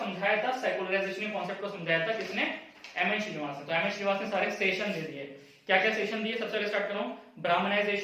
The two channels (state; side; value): identical; both; correlation 1.00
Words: था, सेकुलराइजेशन कॉन्सेप्ट को समझाया था किसने, एम एन श्रीनिवास ने। तो एम एन श्रीनिवास ने सारे सेशन दे दिए, क्या क्या सेशन दिए, सबसे पहले स्टार्ट कर रहा हूं,